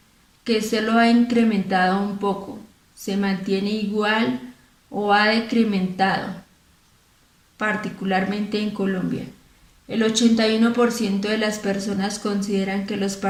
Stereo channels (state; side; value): identical; both; correlation 1.00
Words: que solo ha incrementado un poco, se mantiene igual o ha decrementado, particularmente en Colombia. El 81% de las personas consideran que los